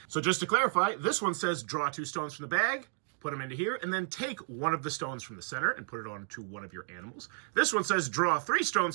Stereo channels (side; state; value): left; silent; digital silence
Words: So just to clarify, this one says draw 2 stones from the bag, put them into here, and then take one of the stones from the center and put it onto one of your animals. This one says draw 3